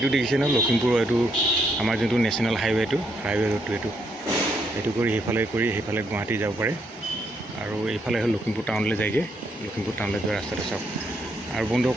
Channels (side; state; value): both; normal; correlation 0.75